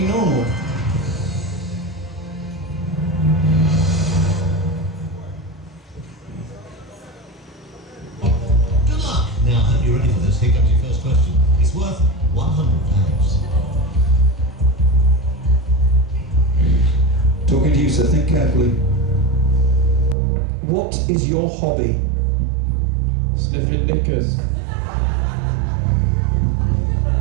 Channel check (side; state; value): left; drops out; at 20.2 s